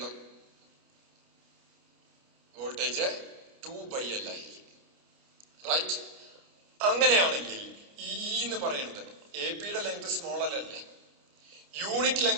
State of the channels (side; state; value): left; late; 29 ms